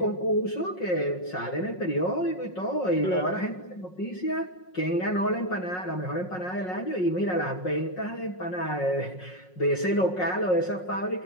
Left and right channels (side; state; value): right; late; 5.5 ms